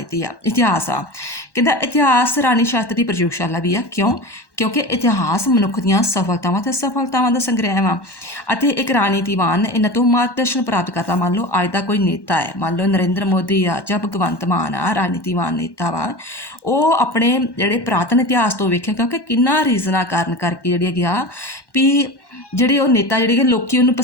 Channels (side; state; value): right; late; 1.1 ms